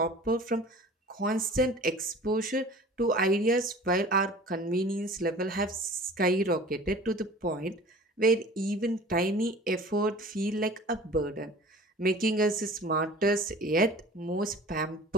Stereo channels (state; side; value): normal; both; correlation 0.43